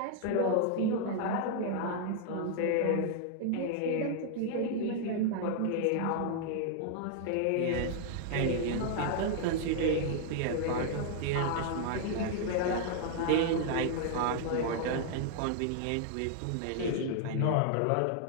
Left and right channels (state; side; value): different; both; correlation 0.00